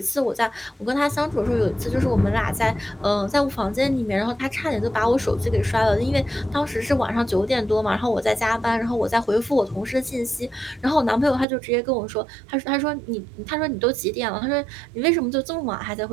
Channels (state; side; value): drops out; left; at 11.5 s